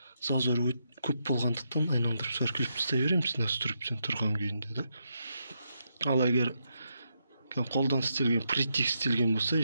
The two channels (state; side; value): inverted; both; correlation -0.82